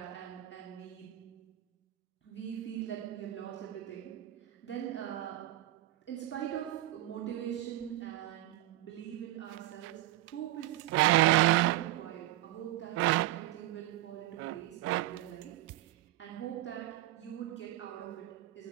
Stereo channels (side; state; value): left; quieter; 16.2 dB